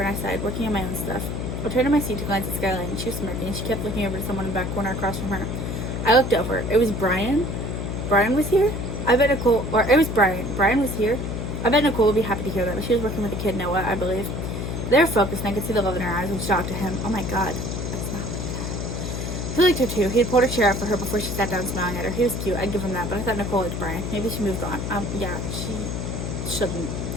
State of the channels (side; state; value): left; noise; hum, 4 dB below the sound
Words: and I sighed, working on my own stuff. I turned to my seat to glance at Skyline and she was smirking and she kept looking over to someone in the back corner across from her. I looked over. It was Brian. Brian was here? I bet Nicole, or it was Brian. Brian was here? I bet Nicole would be happy to hear that, but she was working with the kid, Noah, I believe. They were focused, and I could see the love in her eyes, which shocked to him. Oh my god. That's not like that. He liked her too. He had pulled her chair up for her before she sat down smiling at her. He was cute, I'd give him that, but I thought Nicole liked Brian. Maybe she moved on. Yeah, she shouldn't.